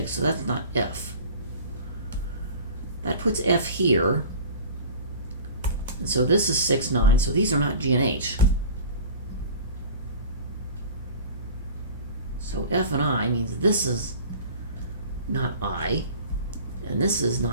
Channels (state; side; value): inverted; both; correlation -0.39